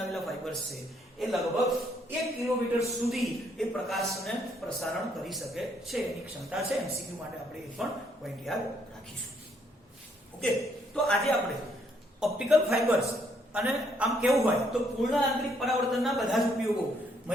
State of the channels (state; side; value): normal; both; correlation 0.70